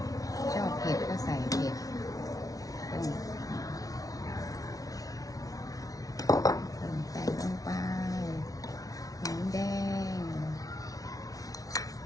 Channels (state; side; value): late; right; 0.18 ms